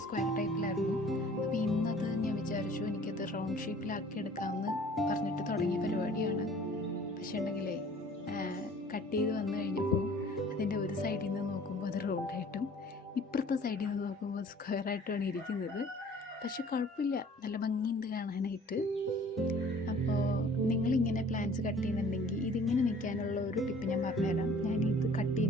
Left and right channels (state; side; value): normal; both; correlation 0.51